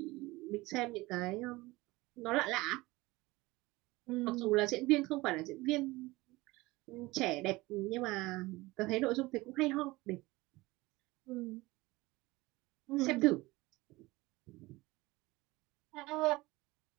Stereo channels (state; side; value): quieter; left; 20.8 dB